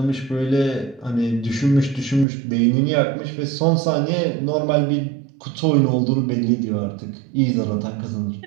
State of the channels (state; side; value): drops out; left; at 2.2 s